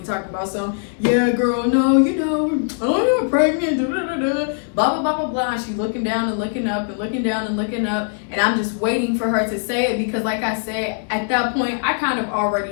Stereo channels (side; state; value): right; silent; digital silence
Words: talking about some, yeah, girl, no, I'm not pregnant, blah, blah, blah, blah, blah. And she's looking down and looking up and looking down and looking up, and I'm just waiting for her to say it, because like I said, at that point, I kind of